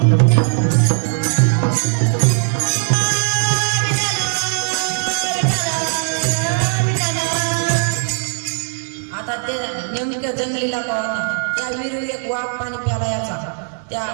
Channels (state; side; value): silent; left; 63 dB below the other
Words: आता ते नेमकं जंगलीला का होता. त्या विहिरीवर एक वाघ पाणी प्याला याचा. त्या